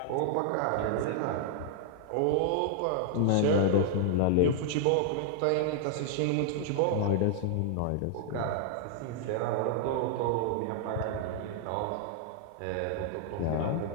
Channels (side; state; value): both; different; correlation -0.01